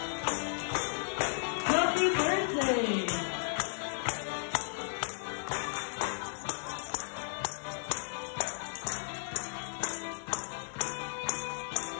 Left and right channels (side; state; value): right; silent; 55 dB below the other